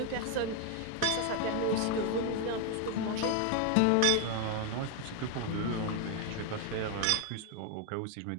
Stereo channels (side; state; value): both; different; correlation 0.01